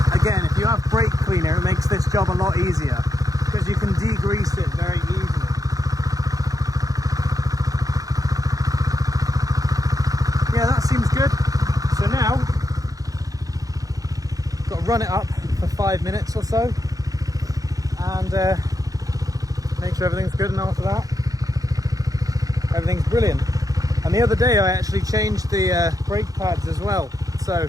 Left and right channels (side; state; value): left; late; 0.17 ms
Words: Again, if you have brake cleaner, it makes this job a lot easier because you can degrease it very easily. Yeah, that seems good. So now, got to run it up for 5 minutes or so and make sure everything's good, and after that, everything's brilliant. And the other day I actually changed the brake pads as well. So,